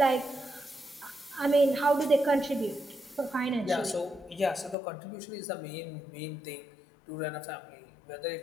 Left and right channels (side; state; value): right; drops out; at 4.8 s